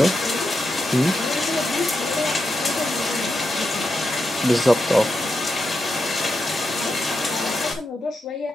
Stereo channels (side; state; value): both; normal; correlation 0.87